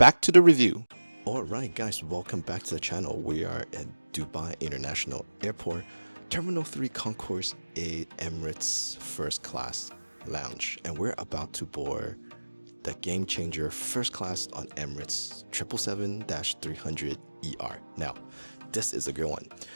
to the review. Alright guys, welcome back to the channel. We are at Dubai International Airport, Terminal 3 Concourse 8 Emirates First Class Lounge, and we're about to board the game changer first class on Emirates 777-300ER. Now, this is a good one.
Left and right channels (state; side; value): inverted; both; correlation -1.00